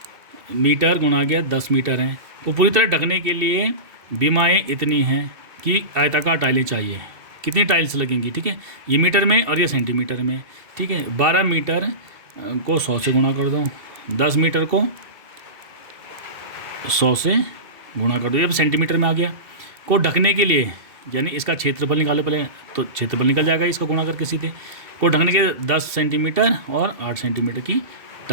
मीटर गुणा गया 10 मीटर हैं, को पूरी तरह ढकने के लिए बीमाएँ इतनी हैं कि आयताकार टाइलें चाहिए। कितनी टाइल्स लगेंगी, ठीक है, ये मीटर में और ये सेंटीमीटर में, ठीक है। 12 मीटर को 100 से गुणा कर दो, 10 मीटर को 100 से गुणा कर दो, ये सेंटीमीटर में आ गया। को ढकने के लिए, यानी इसका क्षेत्रफल निकालो पहले, तो क्षेत्रफल निकल जाएगा इसको गुणा करके सीधे। को ढकने के 10 सेंटीमीटर और 8 सेंटीमीटर की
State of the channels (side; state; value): left; late; 2.7 ms